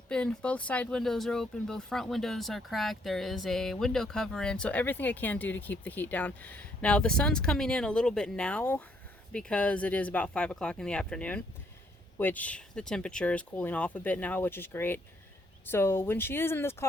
Both side windows are open. Both front windows are cracked. There is a window cover in. So everything I can do to keep the heat down. Now the sun's coming in a little bit now because it is about 5 o'clock in the afternoon, which the temperature is cooling off a bit now, which is great. So when she is in this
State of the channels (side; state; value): both; normal; correlation 0.70